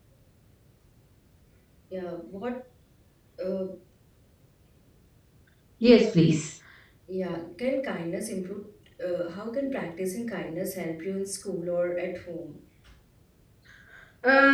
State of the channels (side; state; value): both; identical; correlation 1.00